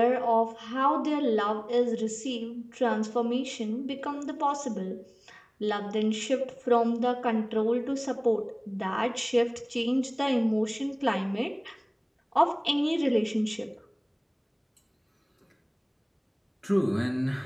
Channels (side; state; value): both; identical; correlation 1.00